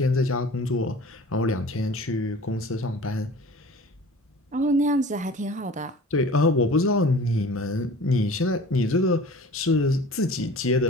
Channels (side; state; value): both; normal; correlation 0.43